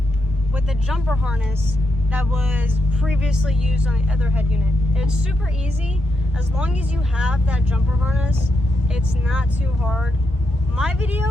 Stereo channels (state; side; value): normal; both; correlation 0.82